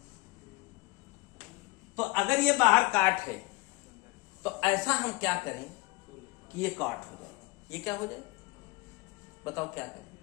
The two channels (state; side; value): quieter; right; 23.5 dB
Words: तो अगर ये बाहर काट है, तो ऐसा हम क्या करें कि ये काट हो जाए। ये क्या हो जाए बताओ, क्या करें?